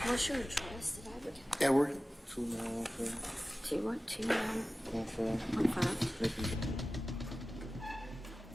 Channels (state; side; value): normal; both; correlation 0.96